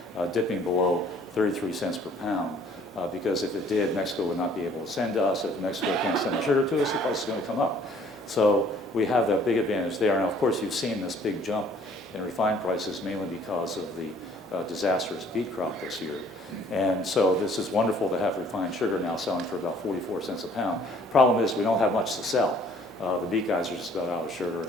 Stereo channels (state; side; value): normal; both; correlation 0.57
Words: dipping below 33 cents per pound. Because if it did, Mexico would not be able to send to us. If Mexico can't send the sugar to us, the price is going to come up. So we have that big advantage there. Now, of course, you've seen this big jump in refined prices mainly because of the disastrous beet crop this year. And so this is wonderful to have refined sugar now selling for about 44 cents a pound. Problem is we don't have much to sell. The beet guys are just about out of sugar,